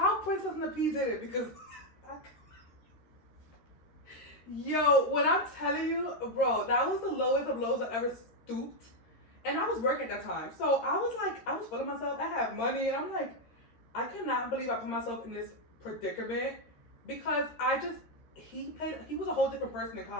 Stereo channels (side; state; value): right; late; 13 ms